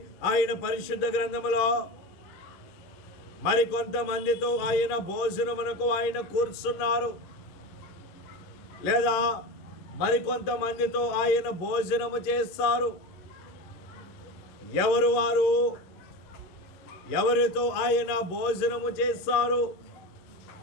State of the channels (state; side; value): late; right; 11 ms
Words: ఆయన పరిశుద్ధ గ్రంథములో మరికొంతమందితో ఆయన భోజనమునకు ఆయన కూర్చున్నారు, లేదా మరికొంతమందితో ఆయన భోజనము చేస్తారు. ఎవరు వారు? ఎవరితో ఆయన భోజనము చేస్తారు?